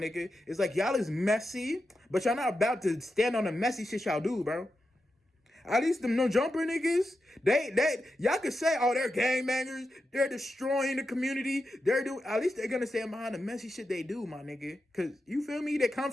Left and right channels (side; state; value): both; normal; correlation 0.89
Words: It's like, y'all is messy, but y'all not about to stand on the messy shit y'all do, bro. At least them No Jumper niggas, they y'all could say, oh, they're gangbangers, they're destroying the community, at least they're gonna stand behind the messy shit they do, my nigga. Cause you feel me? They come